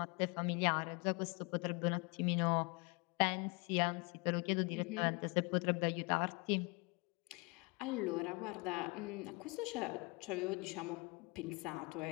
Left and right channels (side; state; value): right; quieter; 28.8 dB